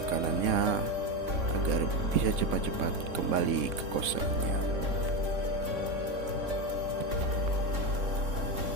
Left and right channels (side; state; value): left; late; 3.6 ms